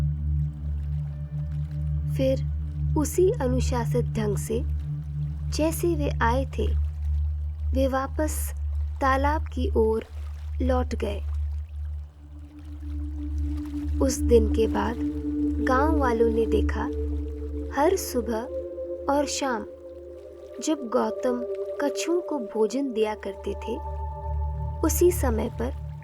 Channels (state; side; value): identical; both; correlation 1.00